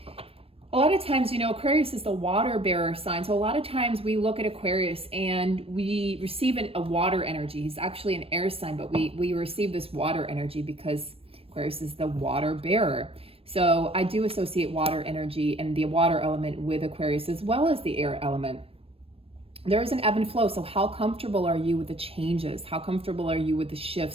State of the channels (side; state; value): left; late; 0.28 ms